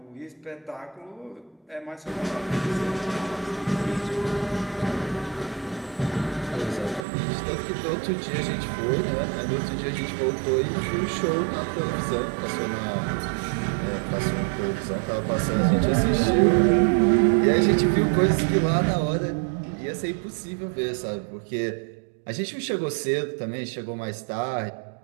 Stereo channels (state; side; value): drops out; left; at 7.0 s